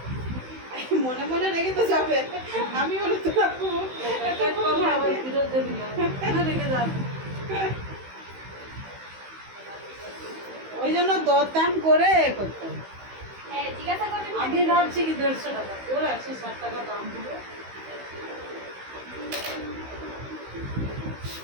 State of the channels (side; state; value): left; late; 16 ms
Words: মনে মনে রেখে তো যাবে। আমি বলে তো রাখবো আবার ফিরত দেবি না রেখে যাবে। ওই জন্য দরদাম করে করতে হবে। হ্যাঁ জিজ্ঞাসা করবেন আমি ভাবছি কি 150 টাকা তোর 160 টাকা দাম দিল।